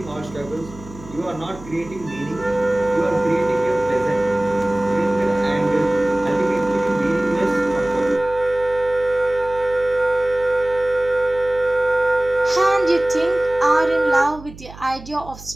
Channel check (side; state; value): right; noise; hum, 17 dB below the sound